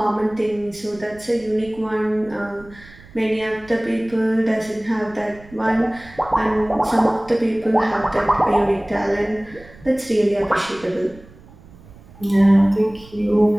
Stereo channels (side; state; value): right; noise; rumble, 22 dB below the sound